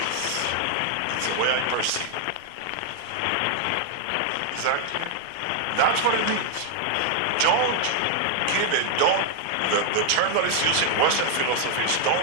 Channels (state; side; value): different; both; correlation 0.00